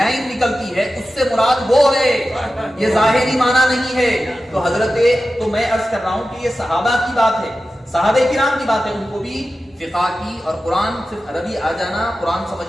نکلتی ہے، اس سے مراد وہ ہے، یہ ظاہری معنی نہیں ہے. تو میں عرض کر رہا ہوں کہ یہ صحابہ کی بات ہے، صحابہ کرام کی بات ہے. ان کو بھی فقہ کی اور قرآن صرف عربی آ جانا قرآن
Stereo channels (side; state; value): both; normal; correlation 0.93